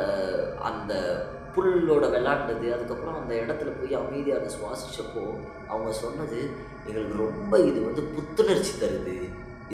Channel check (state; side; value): identical; both; correlation 1.00